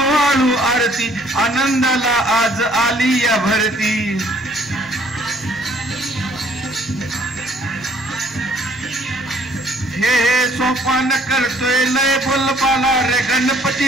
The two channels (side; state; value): both; normal; correlation 0.60